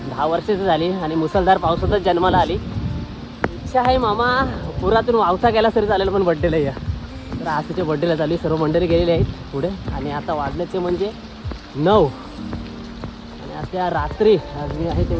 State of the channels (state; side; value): identical; both; correlation 1.00